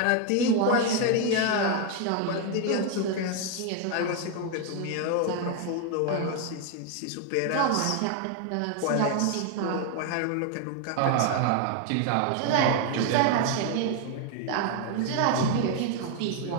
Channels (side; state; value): both; different; correlation 0.01